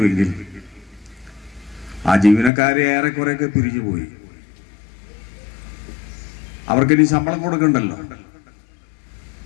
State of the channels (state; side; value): drops out; right; at 2.5 s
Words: ആ ജീവനക്കാരെ ഏറെക്കുറെയൊക്കെ പിരിഞ്ഞുപോയി. അവർക്കിനി ശമ്പളം കൊടുക്കണ്ടല്ലോ.